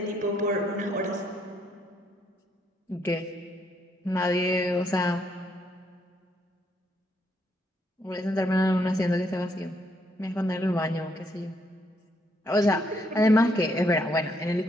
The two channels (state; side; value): normal; both; correlation 0.73